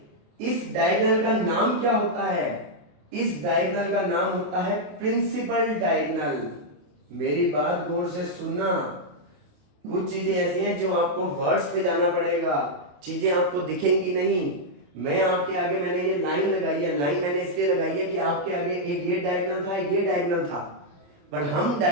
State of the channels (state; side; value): late; left; 28 ms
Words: इस डायगोनल का नाम क्या होता है, इस डायगोनल का नाम होता है प्रिंसिपल डायगोनल। मेरी बात गौर से सुनना, कुछ चीजें ऐसी हैं जो आपको वर्ड्स पे जाना पड़ेगा, चीजें आपको दिखेंगी नहीं। मैं आपके आगे मैंने ये लाइन लगाई है, लाइन मैंने इसलिए लगाई है कि आपके आगे एक ये डायगोनल था, एक ये डायगोनल था, बट हम